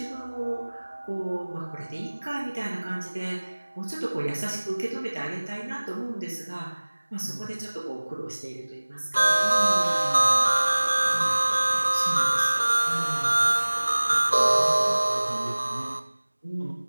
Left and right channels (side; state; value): both; inverted; correlation -1.00